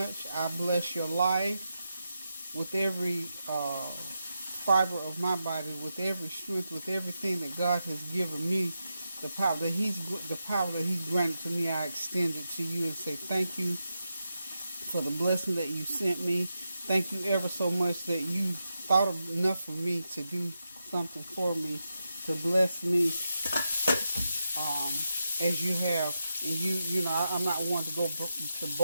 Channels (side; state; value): both; inverted; correlation -0.87